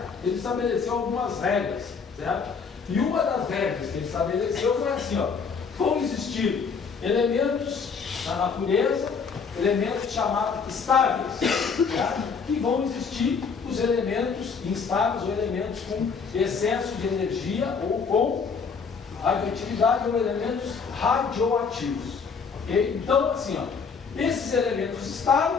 ele estabeleceu algumas regras, certo? E uma das regras que ele estabeleceu foi assim, ó, vão existir elementos na natureza elementos chamados estáveis, tá? Que vão existir os elementos instáveis ou elementos com excesso de energia ou com radioatividade ou elementos radioativos. Okay? Então, assim, ó, esses elementos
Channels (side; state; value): right; quieter; 5.6 dB